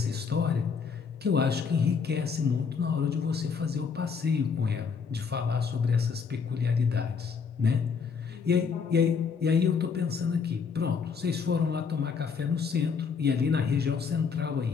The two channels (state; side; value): quieter; right; 5.8 dB